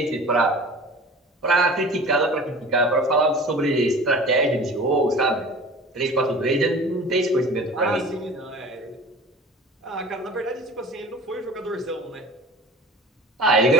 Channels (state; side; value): normal; both; correlation 0.40